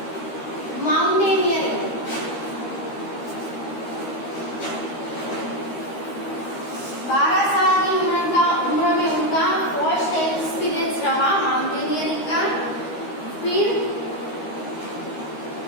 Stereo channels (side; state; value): right; late; 13 ms